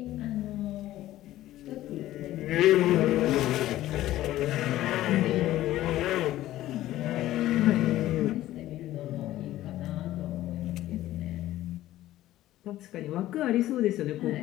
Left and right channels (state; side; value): quieter; right; 14.6 dB